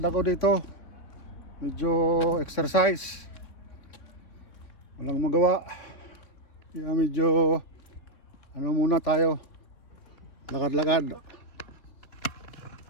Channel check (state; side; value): late; right; 3.5 ms